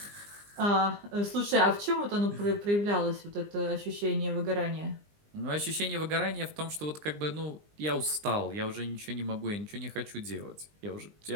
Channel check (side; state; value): left; late; 20 ms